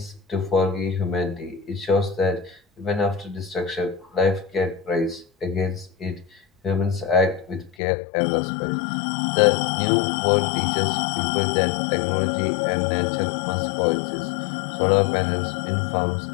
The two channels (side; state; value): right; drops out; at 7.8 s